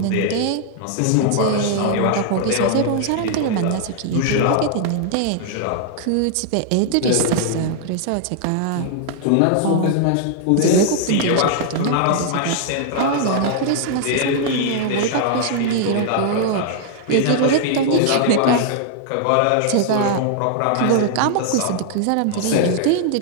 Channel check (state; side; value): different; both; correlation -0.01